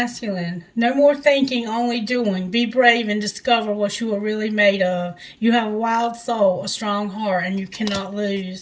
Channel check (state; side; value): identical; both; correlation 1.00